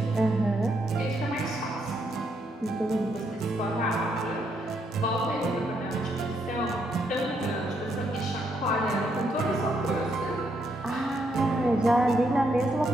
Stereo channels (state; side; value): normal; both; correlation 0.76